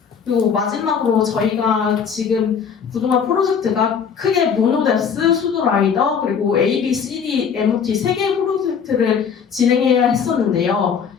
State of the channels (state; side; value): quieter; right; 6.8 dB